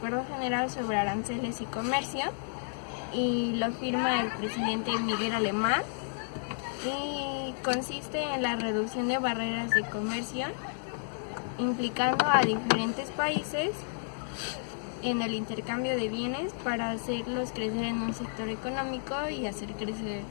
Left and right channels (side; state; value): right; silent; digital silence